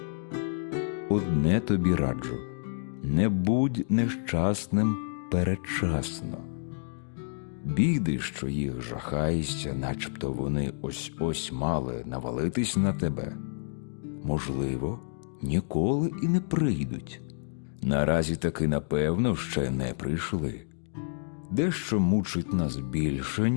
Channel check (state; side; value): silent; right; digital silence